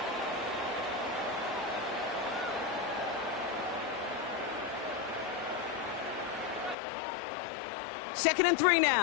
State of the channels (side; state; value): right; drops out; at 6.8 s